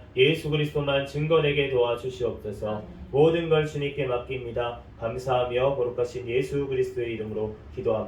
예수 그리스도만 증거되게 도와주시옵소서. 모든 걸 주님께 맡깁니다. 감사하며 거룩하신 예수 그리스도의 이름으로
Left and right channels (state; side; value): identical; both; correlation 1.00